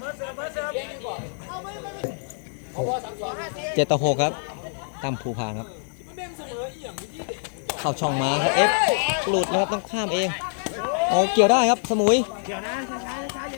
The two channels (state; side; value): silent; right; digital silence